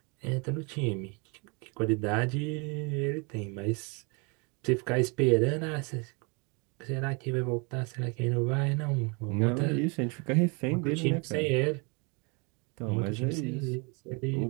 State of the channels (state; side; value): quieter; left; 31.8 dB